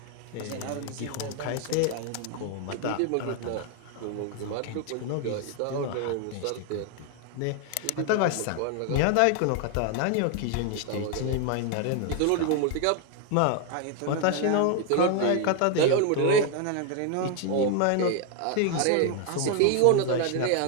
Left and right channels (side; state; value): both; different; correlation 0.01